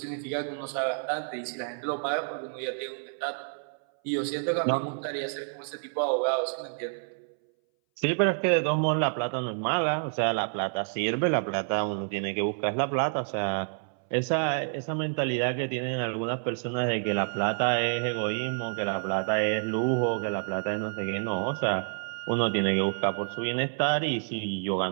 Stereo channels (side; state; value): left; silent; 59 dB below the other